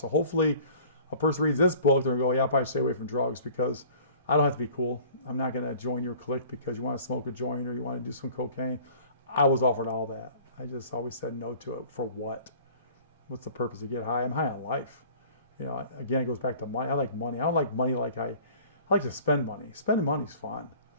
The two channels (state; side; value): inverted; both; correlation -0.48